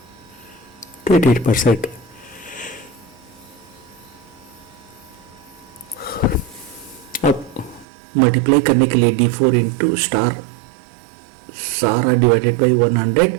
%. अब मल्टीप्लाई करने के लिए D4 इंटू स्टार सारा divided by 100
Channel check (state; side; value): drops out; left; at 7.9 s